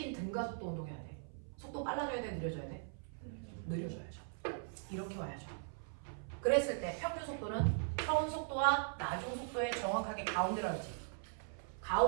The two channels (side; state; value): left; silent; 51 dB below the other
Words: 등가속도 운동해야 돼. 속도 빨라져야 돼? 느려져야 돼? 느려져야죠. 이렇게 와야죠. 그랬을 때 평균 속도는 처음 속도와 나중 속도의 정확하게 가운데로 하지.